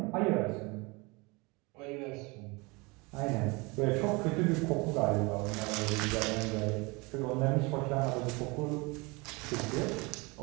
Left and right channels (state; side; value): quieter; left; 26.5 dB